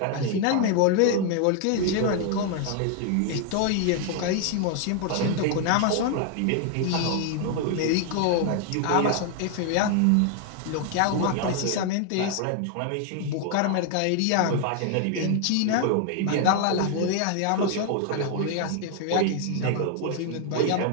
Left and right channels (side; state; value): both; different; correlation 0.00